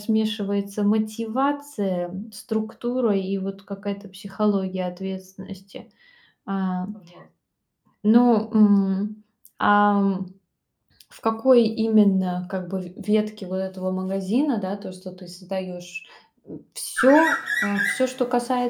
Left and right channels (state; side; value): identical; both; correlation 1.00